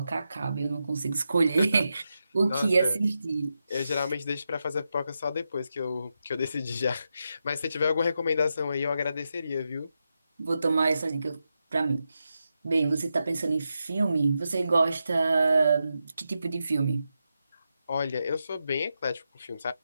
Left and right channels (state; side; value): inverted; both; correlation -0.87